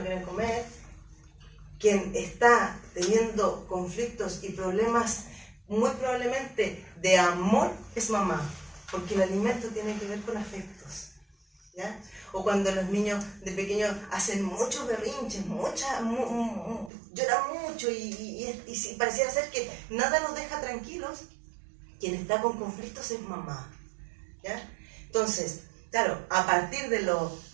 quien está teniendo conflictos y problemas muy probablemente de amor es mamá, porque el alimento tiene que ver con afectos, ¿ya? O cuando los niños de pequeños hacen muchos berrinches, lloran mucho y pareciera ser que nada nos deja tranquilos, quien está con conflictos es mamá, ¿ya? Entonces, claro, a partir de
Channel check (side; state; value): left; drops out; at 16.9 s